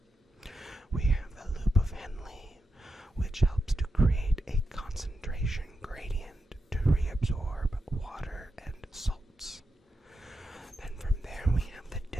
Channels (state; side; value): normal; both; correlation 0.87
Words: We have the loop of Henle, which helps to create a concentration gradient to reabsorb water and salts. Then from there we have the